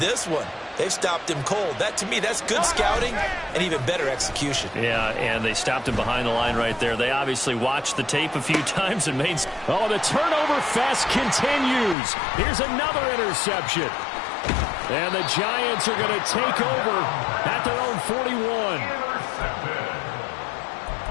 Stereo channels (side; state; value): right; drops out; at 12.0 s